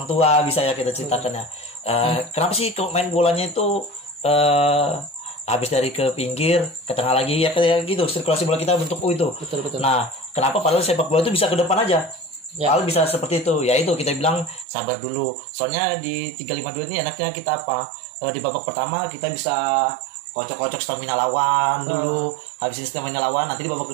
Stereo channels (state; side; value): drops out; left; at 14.7 s